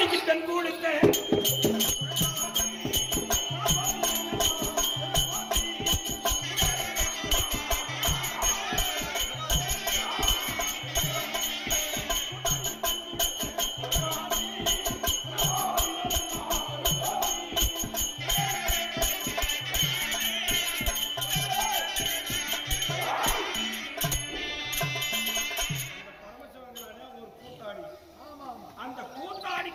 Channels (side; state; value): both; identical; correlation 1.00